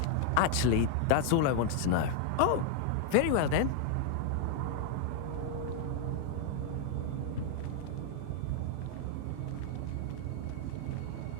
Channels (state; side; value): different; both; correlation 0.00